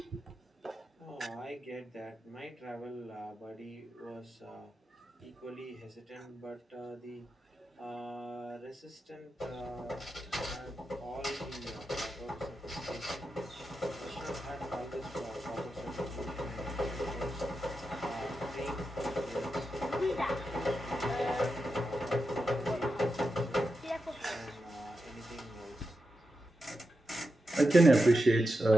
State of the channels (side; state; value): both; normal; correlation 0.89